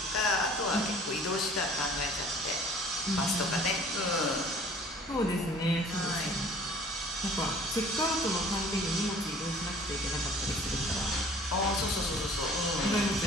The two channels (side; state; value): both; normal; correlation 0.50